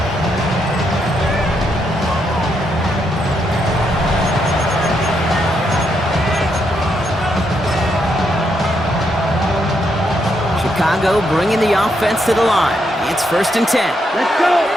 Chicago bringing the offense to the line. It's 1st and 10. Let's go.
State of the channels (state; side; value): normal; both; correlation 0.78